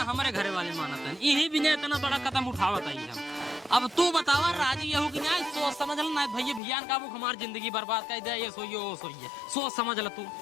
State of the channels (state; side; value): drops out; right; at 6.6 s